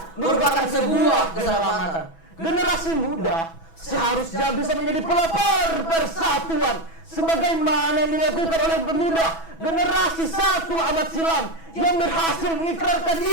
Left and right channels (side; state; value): right; late; 6.1 ms